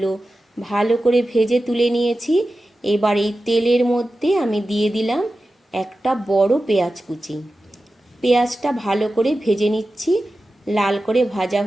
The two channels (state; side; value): normal; both; correlation 0.93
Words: ভালো করে ভেজে তুলে নিয়েছি। এবার এই তেলের মধ্যে আমি দিয়ে দিলাম একটা বড় পেঁয়াজ কুচি। পেঁয়াজটা ভালো করে ভেজে নিচ্ছি, লাল করে ভাজা